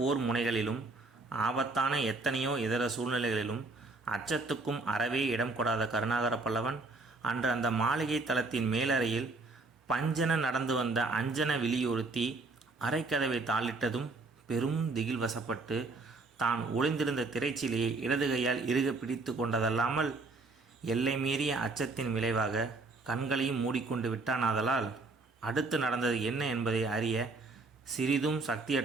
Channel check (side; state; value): left; quieter; 3.5 dB